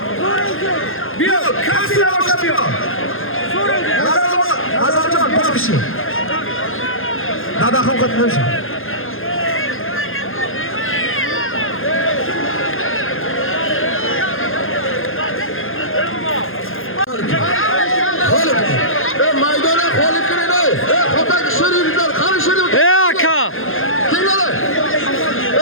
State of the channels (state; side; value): late; right; 0.60 ms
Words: Yo'q, kassira boshlab yo'q. Nazarjon boshqishi. Dadaxon qat'iy. Maydona qolib kiringlar. Xo'pak shirinlar, qani shirin. Aka. Kelinglar.